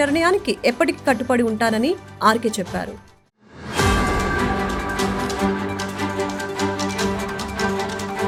నిర్ణయానికి ఎప్పటికీ కట్టుబడి ఉంటానని ఆర్కే చెప్పారు.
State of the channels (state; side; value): identical; both; correlation 1.00